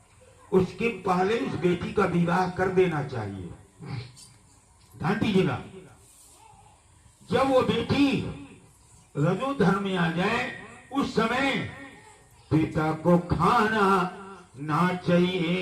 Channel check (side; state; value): both; identical; correlation 1.00